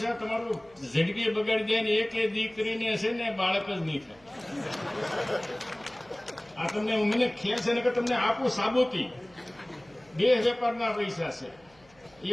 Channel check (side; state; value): right; noise; hum, 29 dB below the sound